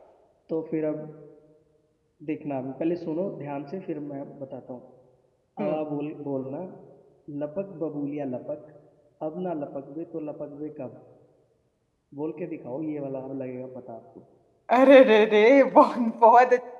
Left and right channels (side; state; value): both; identical; correlation 1.00